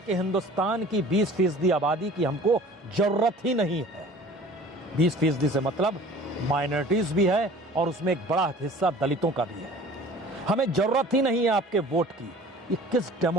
हिंदुस्तान की 20% आबादी की हमको जरूरत ही नहीं है। 20% से मतलब माइनॉरिटीज भी है और उसमें एक बड़ा हिस्सा दलितों का भी है। हमें जरूरत ही नहीं है आपके वोट की। ये किस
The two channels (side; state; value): both; normal; correlation 0.46